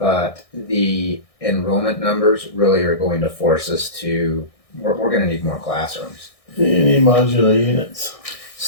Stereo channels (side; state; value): right; late; 1.6 ms